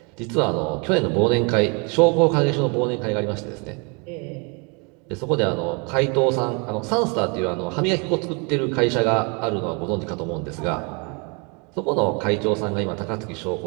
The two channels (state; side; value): quieter; left; 33.0 dB